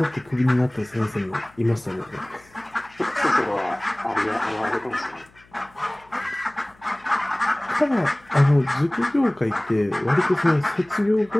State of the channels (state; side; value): noise; left; hum, 29 dB below the sound